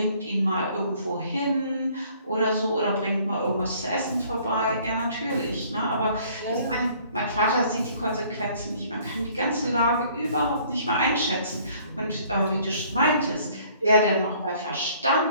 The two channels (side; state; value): both; inverted; correlation -0.58